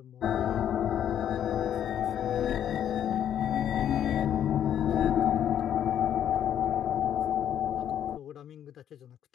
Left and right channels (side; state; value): right; quieter; 10.0 dB